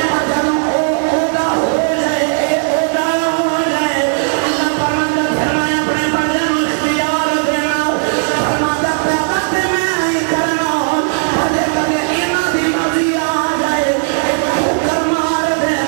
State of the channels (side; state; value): left; silent; digital silence